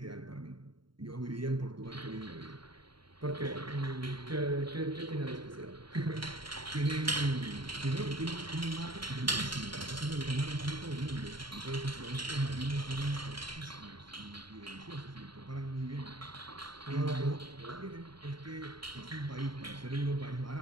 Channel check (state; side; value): late; left; 0.73 ms